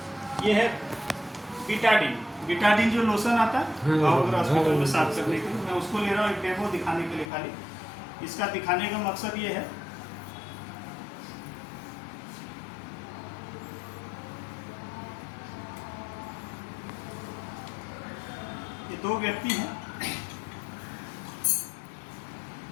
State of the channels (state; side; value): drops out; right; at 7.3 s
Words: ये है बीटाडीन। बीटाडीन जो लोशन आता है हॉस्पिटल में साफ करने के लिए, मैं उसको ले रहा हूँ एक डेमो दिखाने के लिए खाली। इसका दिखाने का मकसद ये है, ये दो व्यक्ति हैं,